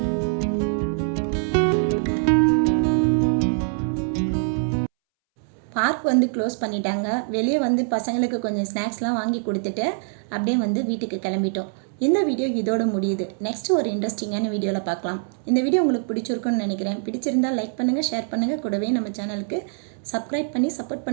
பார்க் வந்து க்ளோஸ் பண்ணிட்டாங்க. வெளியே வந்து பசங்களுக்கு கொஞ்சம் ஸ்நாக்ஸ்லாம் வாங்கி கொடுத்துட்டு அப்படியே வந்து வீட்டுக்கு கிளம்பிட்டோம். இந்த வீடியோ இதோடு முடியுது. நெக்ஸ்ட் ஒரு இன்ட்ரெஸ்டிங்கான வீடியோவில் பார்க்கலாம். இந்த வீடியோ உங்களுக்கு பிடிச்சிருக்குன்னு நினைக்கிறேன். பிடிச்சிருந்தால் லைக் பண்ணுங்கள், ஷேர் பண்ணுங்கள், கூடவே நம்ம சேனலுக்கு சப்ஸ்கிரைப் பண்ணி சப்போர்ட்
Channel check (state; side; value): silent; left; 63 dB below the other